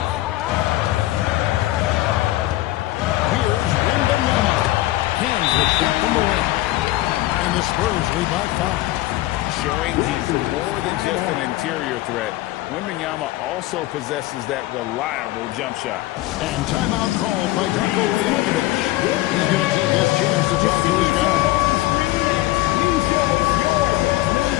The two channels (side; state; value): right; quieter; 17.2 dB